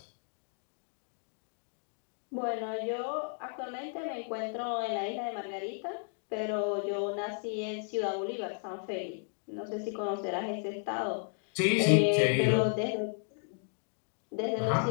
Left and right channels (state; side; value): silent; right; 55 dB below the other